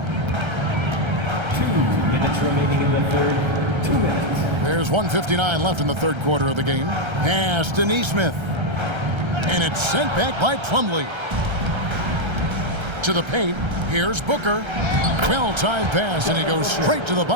2 minutes remaining in the third. 2 minutes. There's 1:59 left in the third quarter of the game. Pass to Nesmith. And it's sent back by Plumlee. To the paint. Here's Booker. Well-timed pass, and he goes straight to the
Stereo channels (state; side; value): late; left; 1.3 ms